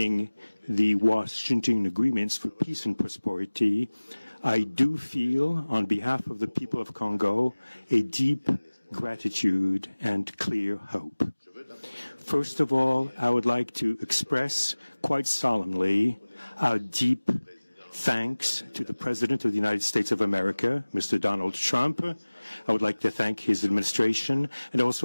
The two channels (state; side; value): inverted; both; correlation -1.00